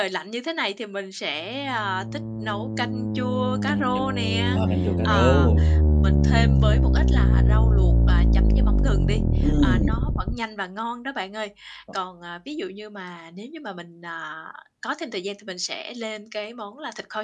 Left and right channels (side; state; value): both; identical; correlation 1.00